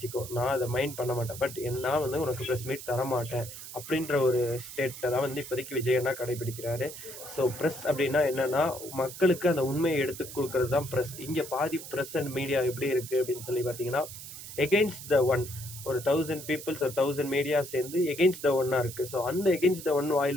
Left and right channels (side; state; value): right; noise; hiss, 12 dB below the sound